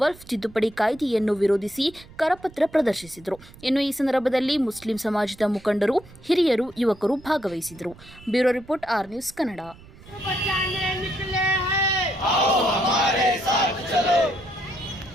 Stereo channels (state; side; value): noise; right; rumble, 22 dB below the sound